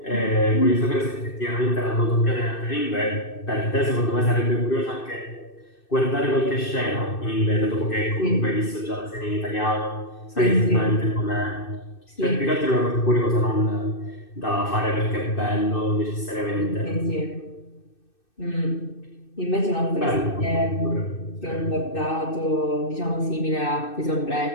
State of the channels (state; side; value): late; right; 2.6 ms